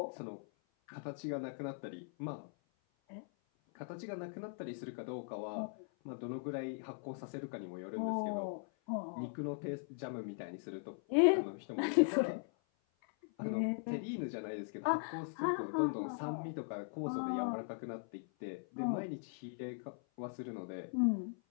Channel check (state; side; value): silent; right; 51 dB below the other